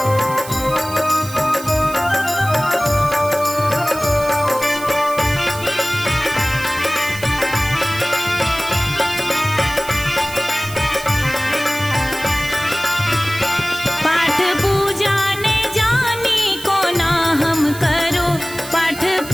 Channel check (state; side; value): noise; right; hiss, 13 dB below the sound